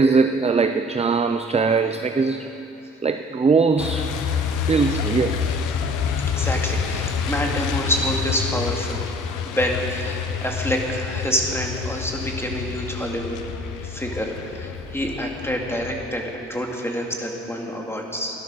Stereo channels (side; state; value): both; normal; correlation 0.51